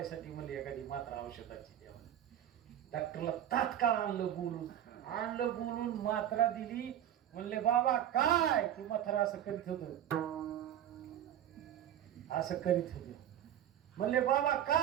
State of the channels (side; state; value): left; quieter; 11.0 dB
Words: म्हणले एखादी मात्रा औषधाची द्या. डॉक्टरला तात्काळ आणलं बोलून मात्रा दिली. म्हणले बाबा काय? ती म्हातारा असं करीत होत, असं करीत होत. म्हणले बाबा